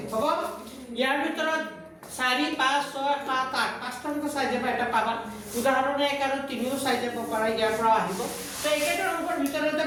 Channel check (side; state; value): both; identical; correlation 1.00